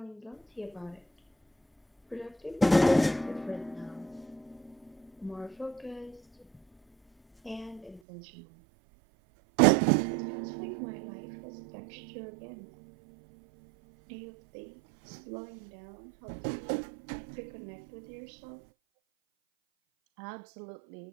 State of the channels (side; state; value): left; drops out; at 8.0 s